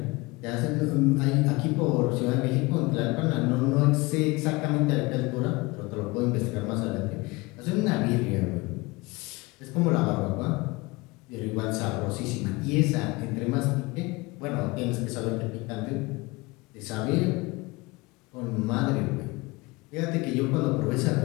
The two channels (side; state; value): right; quieter; 23.6 dB